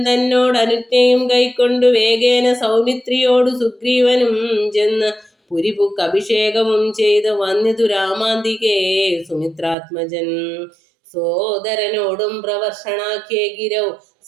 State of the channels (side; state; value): left; drops out; at 9.8 s